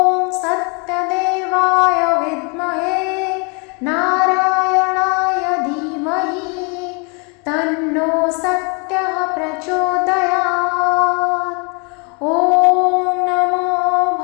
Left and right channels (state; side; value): quieter; right; 33.7 dB